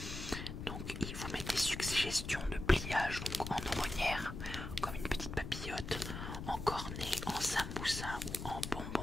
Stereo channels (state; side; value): noise; left; rumble, 7 dB below the sound